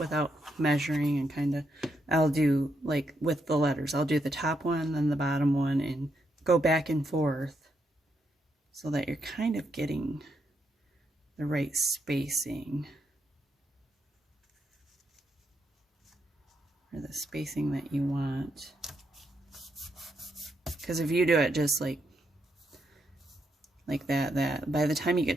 measuring, and kind of, I'll do like with the letters, I'll do the top one, then the bottom one, and go back and forth so that you're kind of getting the right spacing, or the spacing that you want. Because if you do it just like that, by the time you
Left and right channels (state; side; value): normal; both; correlation 0.80